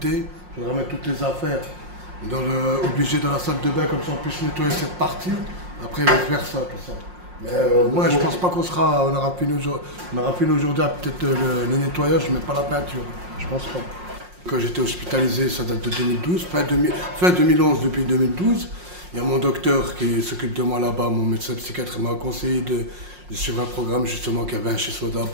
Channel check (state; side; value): late; left; 5.6 ms